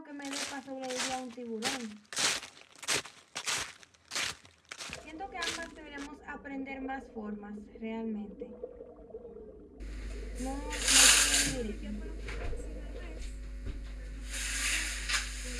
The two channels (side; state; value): both; identical; correlation 1.00